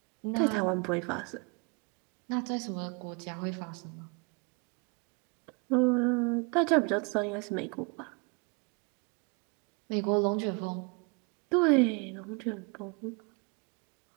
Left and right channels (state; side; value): quieter; left; 32.9 dB